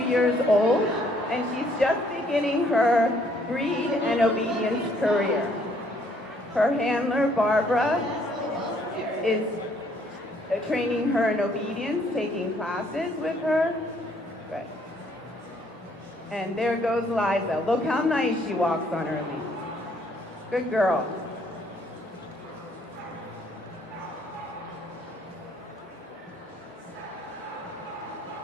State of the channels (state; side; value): normal; both; correlation 0.65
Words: years old, and she's just beginning her breed and obedience career. Her handler, Barbara, is training her in obedience, taking classes with her. Good. And there goes Liza. Look how nice she walks on her lead. Good girl.